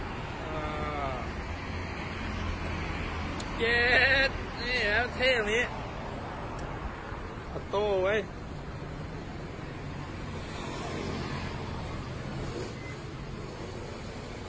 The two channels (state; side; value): identical; both; correlation 1.00